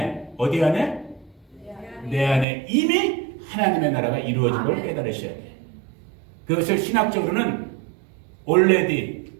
어디 안에? 내 안에 이미 하나님의 나라가 이루어진 걸 깨달으셔야 돼요. 그것을 신학적으로는 already,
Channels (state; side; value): drops out; left; at 2.5 s